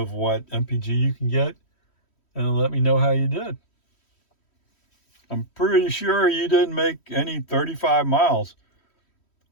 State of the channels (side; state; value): right; late; 3.1 ms